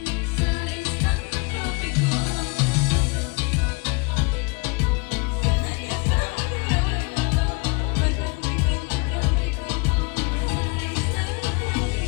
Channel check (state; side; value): quieter; right; 29.5 dB